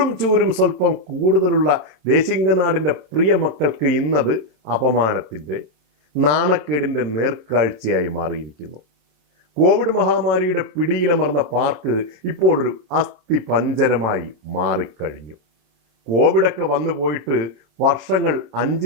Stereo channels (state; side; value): late; left; 27 ms